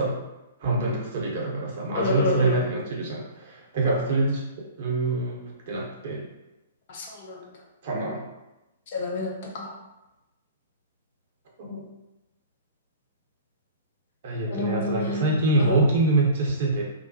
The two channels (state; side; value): inverted; both; correlation -0.40